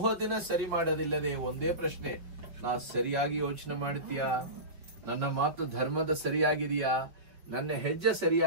ಸರಿ ಮಾಡೋದಿಲ್ಲದೆ ಒಂದೇ ಪ್ರಶ್ನೆ, ನಾ ಸರಿಯಾಗಿ ಯೋಚನೆ ಮಾಡ್ತೀಯಾ, ನನ್ನ ಮಾತು ಧರ್ಮದ ಸರಿಯಾಗಿದೆಯಾ, ನನ್ನ ಹೆಜ್ಜೆ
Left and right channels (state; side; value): late; left; 5.2 ms